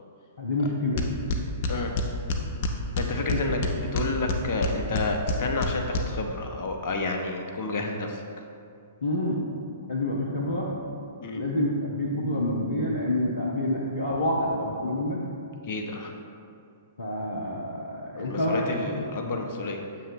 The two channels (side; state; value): both; inverted; correlation -0.44